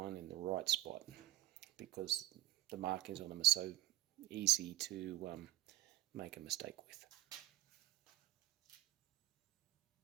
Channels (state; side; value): quieter; left; 15.6 dB